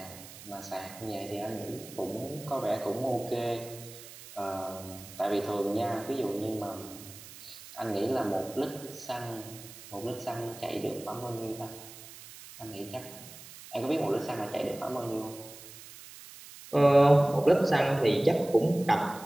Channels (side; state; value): right; noise; hiss, 16 dB below the sound